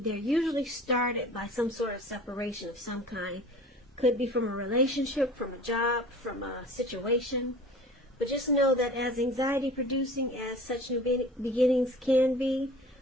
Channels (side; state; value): both; normal; correlation 0.43